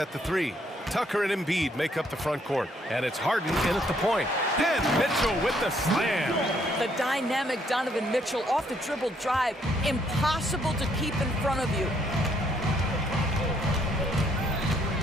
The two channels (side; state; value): both; normal; correlation 0.69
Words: the 3. Tucker and Embiid make up the front court. And it's Harden in at the point. And Mitchell with the slam. The dynamic Donovan Mitchell off the dribble drive. Impossible to keep in front of you.